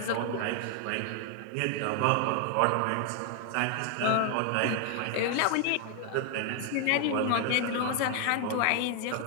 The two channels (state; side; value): different; both; correlation 0.00